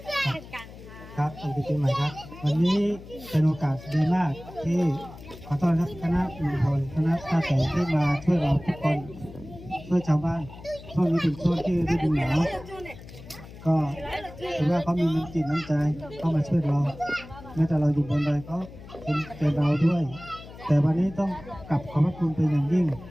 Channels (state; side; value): noise; left; hum, 17 dB below the sound